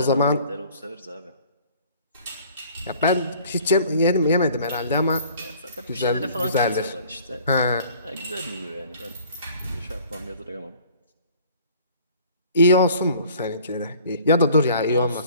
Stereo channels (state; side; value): inverted; both; correlation -0.52